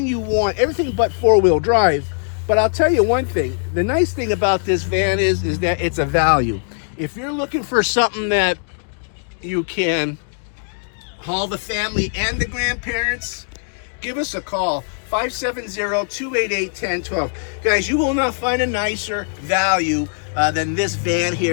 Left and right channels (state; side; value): silent; right; 66 dB below the other